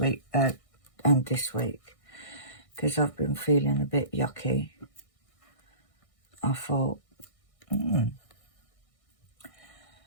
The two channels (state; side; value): late; right; 1.6 ms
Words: week and this week, because I've been feeling a bit yucky, I thought,